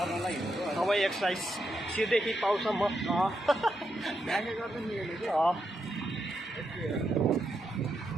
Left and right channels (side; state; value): both; normal; correlation 0.83